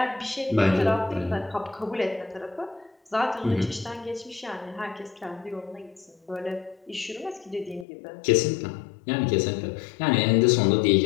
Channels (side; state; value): right; drops out; at 7.9 s